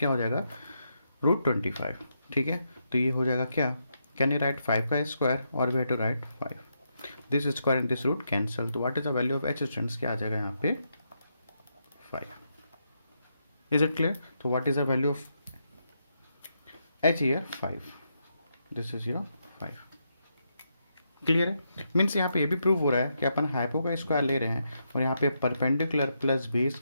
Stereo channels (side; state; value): both; inverted; correlation -0.81